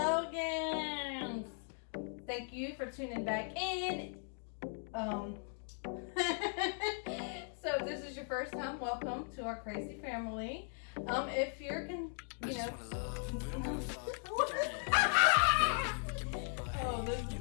Thank you for tuning back in. So if this is your first time, welcome to our crazy family. If you're oh, this is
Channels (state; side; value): silent; right; 52 dB below the other